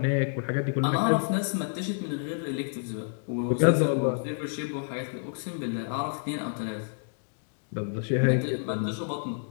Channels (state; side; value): silent; right; digital silence